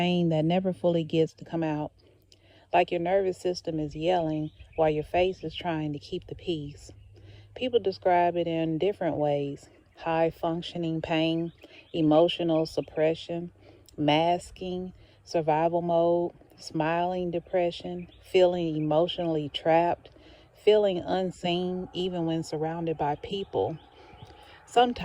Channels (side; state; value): both; identical; correlation 1.00